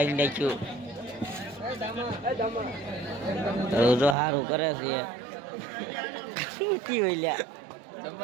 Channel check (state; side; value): drops out; left; at 4.2 s